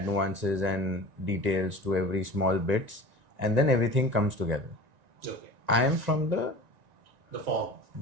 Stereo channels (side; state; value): left; late; 1.9 ms